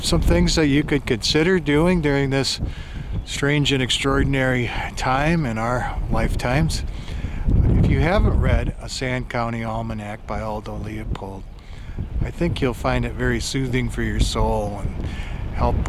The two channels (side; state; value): both; identical; correlation 1.00